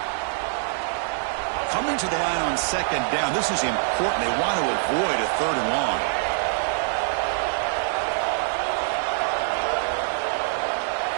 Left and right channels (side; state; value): left; silent; digital silence